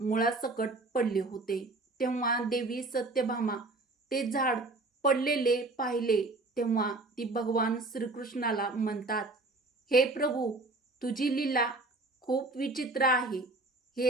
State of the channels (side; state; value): left; quieter; 3.0 dB